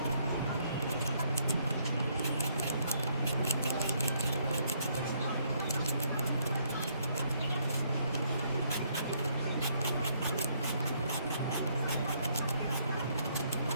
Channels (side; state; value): both; inverted; correlation -0.69